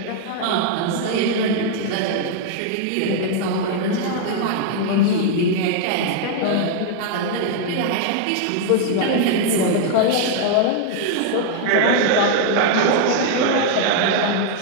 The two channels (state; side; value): different; both; correlation 0.00